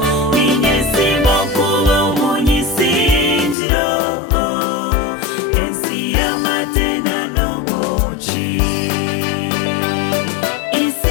ninyesimo kuba umunyisingiro ensi y'amatena n'ubuki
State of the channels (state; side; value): drops out; right; at 3.6 s